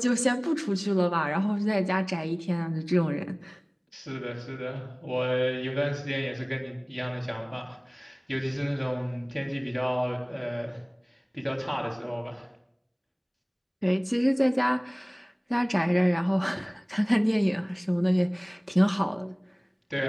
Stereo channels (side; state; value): both; identical; correlation 1.00